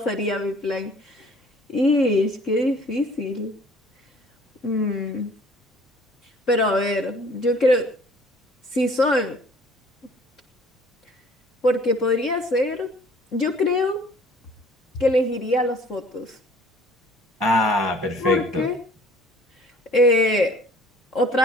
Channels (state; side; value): normal; both; correlation 0.53